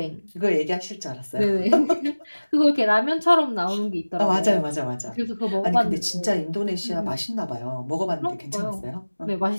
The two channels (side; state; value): both; inverted; correlation -1.00